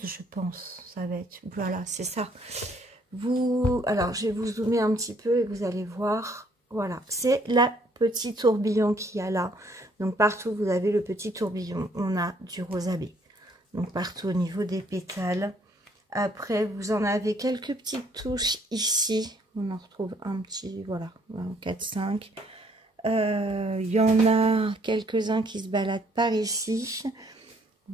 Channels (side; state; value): both; normal; correlation 0.65